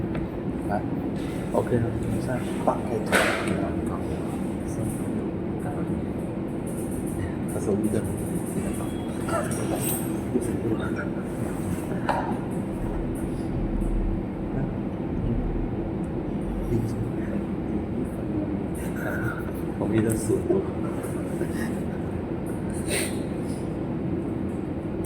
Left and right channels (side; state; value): both; identical; correlation 1.00